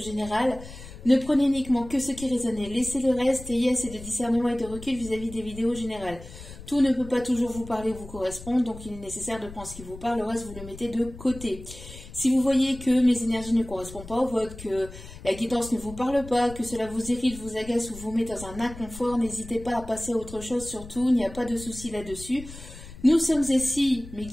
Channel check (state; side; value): noise; left; rumble, 15 dB below the sound